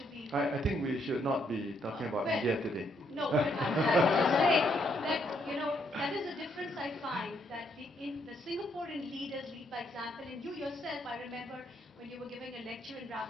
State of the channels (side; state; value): both; normal; correlation 0.73